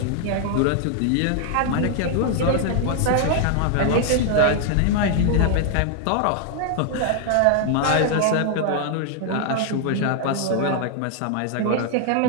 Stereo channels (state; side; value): different; both; correlation 0.00